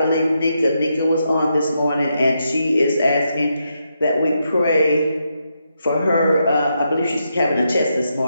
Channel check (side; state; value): both; inverted; correlation -0.82